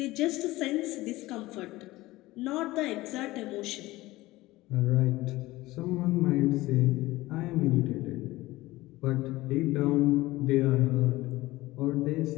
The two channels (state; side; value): quieter; right; 18.7 dB